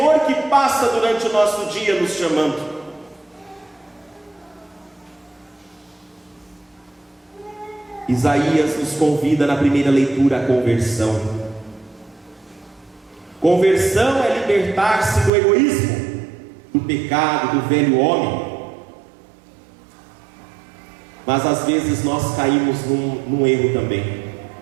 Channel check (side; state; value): left; drops out; at 15.3 s